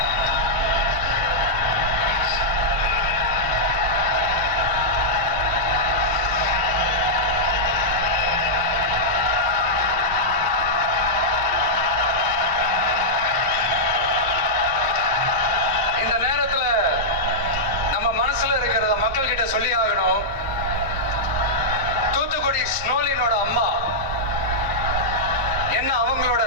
இந்த நேரத்துல நம்ம மனசுல இருக்கிறத மக்கள் கிட்ட சொல்லி ஆகணும். தூத்துக்குடி ஸ்னோலினோட அம்மா என்ன அவங்களோட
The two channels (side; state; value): both; normal; correlation -0.09